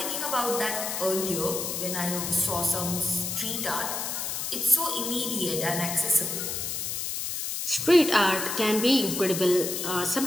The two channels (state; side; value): noise; left; hiss, 3 dB below the sound